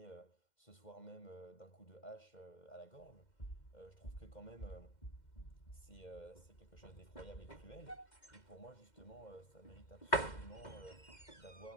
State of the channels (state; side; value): late; right; 2.1 ms